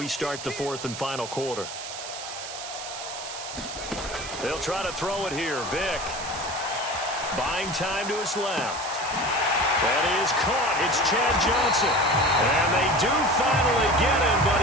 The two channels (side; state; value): right; noise; hiss, 9 dB below the sound